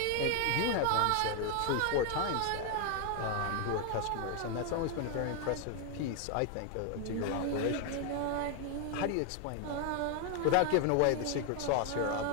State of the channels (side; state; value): both; different; correlation 0.01